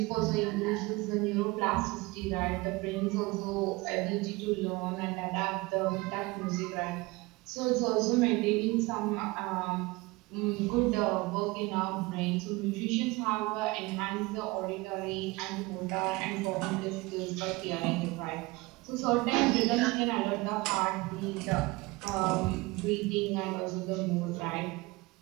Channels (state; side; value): quieter; left; 23.0 dB